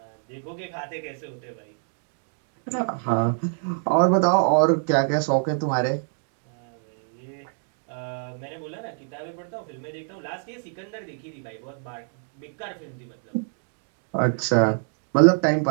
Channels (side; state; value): left; silent; digital silence